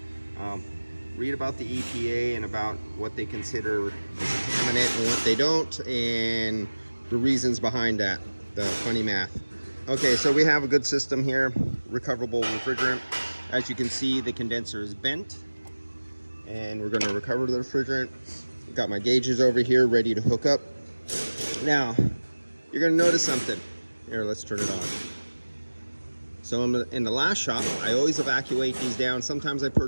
Read about the EPA and about what they consider contaminant and what they don't, and the reasons behind that, the funny math. Okay, so we have a good system here, recoverable refrigerant. As you can see, the condenser is bent, and we're gonna recover the refrigerant. Got my gauges over here ready to hook up. Now, you're gonna notice something. Here, let's turn it on. So in the last shop, I always evacuate these down. Sometimes I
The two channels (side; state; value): both; inverted; correlation -1.00